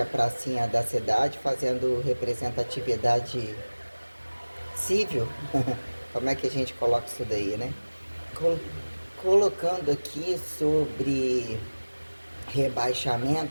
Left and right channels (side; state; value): both; inverted; correlation -1.00